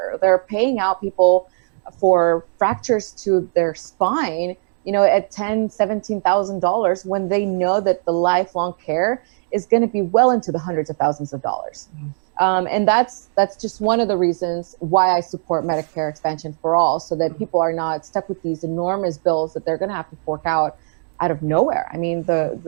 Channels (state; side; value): silent; left; digital silence